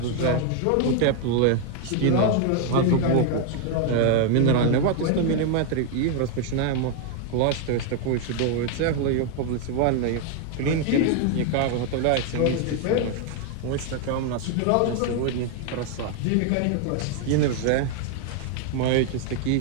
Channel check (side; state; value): both; different; correlation 0.00